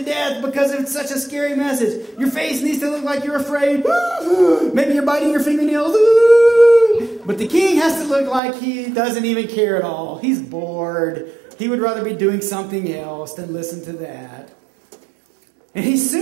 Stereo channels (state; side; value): drops out; left; at 8.4 s